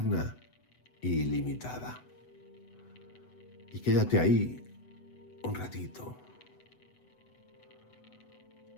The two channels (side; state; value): right; late; 8.0 ms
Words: y ilimitada. Y quédate ahí un ratito.